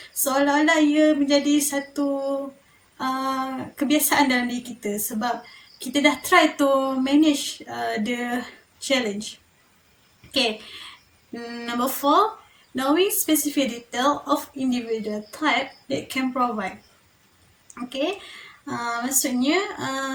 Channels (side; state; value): both; identical; correlation 1.00